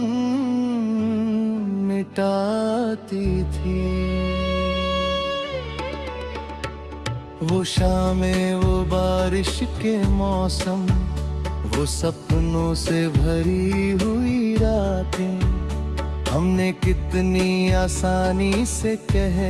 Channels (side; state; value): both; identical; correlation 1.00